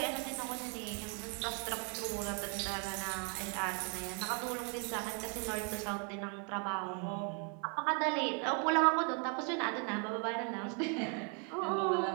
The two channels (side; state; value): left; quieter; 38.5 dB